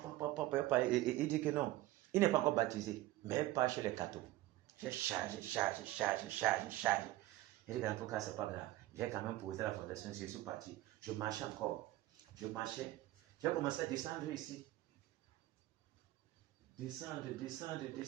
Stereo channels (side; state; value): left; quieter; 16.5 dB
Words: il dit que non, il n'est pas encore baptisé, mais pas chez les cathos. J'ai chargé. Il dit qu'en tout cas, c'est pas grave. J'ai quand même posé la fondation, je suis parti. Je marchais encore. J'ai commencé à descendre ici. Descendre.